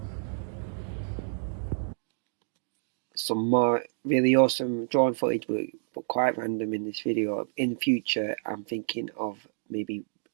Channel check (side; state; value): left; silent; digital silence